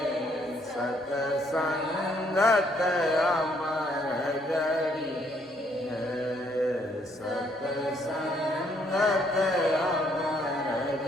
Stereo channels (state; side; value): normal; both; correlation 0.69